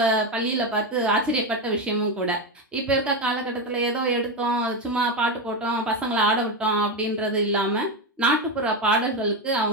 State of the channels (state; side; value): normal; both; correlation 0.12